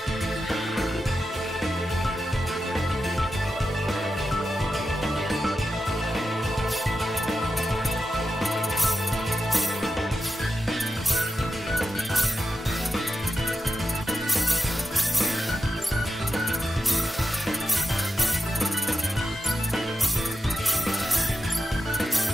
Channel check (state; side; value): normal; both; correlation 0.90